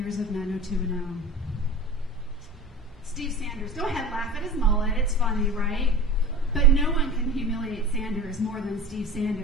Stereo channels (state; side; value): normal; both; correlation 0.35